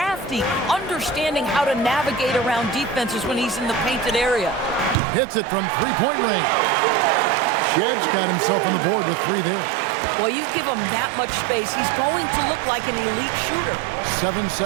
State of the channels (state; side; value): drops out; left; at 5.0 s